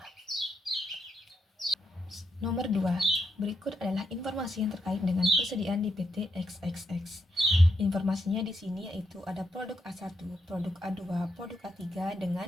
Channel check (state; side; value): normal; both; correlation 0.81